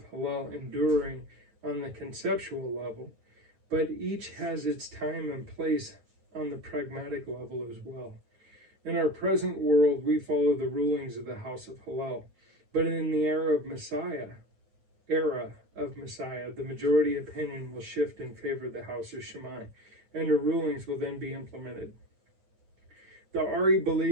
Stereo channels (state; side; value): late; left; 9.3 ms